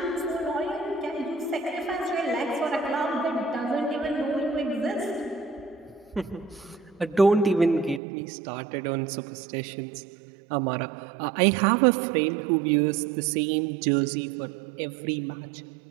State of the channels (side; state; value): left; drops out; at 8.0 s